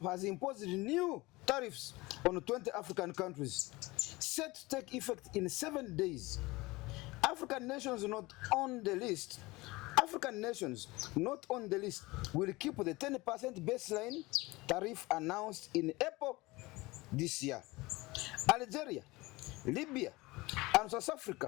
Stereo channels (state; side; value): quieter; right; 21.8 dB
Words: has imposed new tariffs on 20 African countries, set to take effect in 7 days. African nations not on the list will keep the 10% baseline tariff announced in April this year. Algeria, Libya, and South